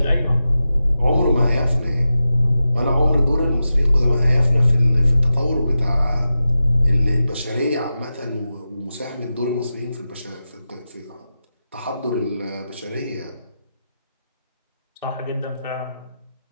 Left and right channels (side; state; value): both; inverted; correlation -0.92